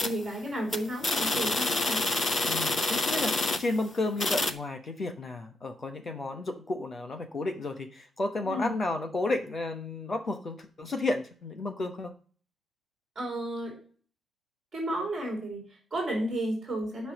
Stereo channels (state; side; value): normal; both; correlation 0.81